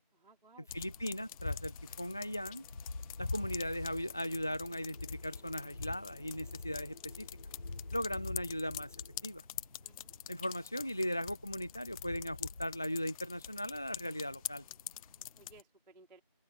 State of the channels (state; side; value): inverted; both; correlation -0.87